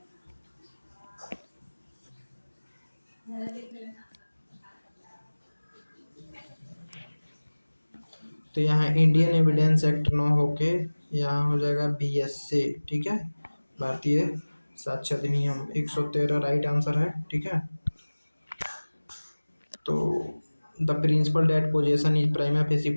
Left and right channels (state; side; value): inverted; both; correlation -1.00